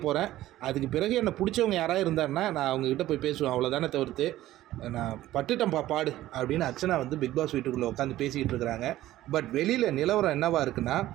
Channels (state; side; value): quieter; left; 14.8 dB